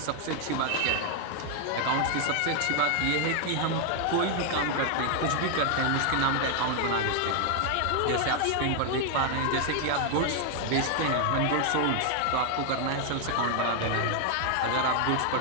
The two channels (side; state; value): both; different; correlation 0.00